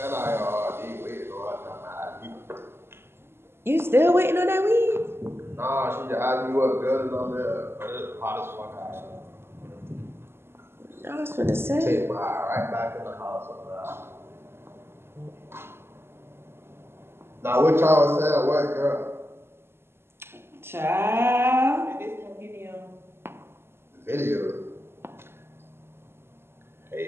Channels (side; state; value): left; late; 0.12 ms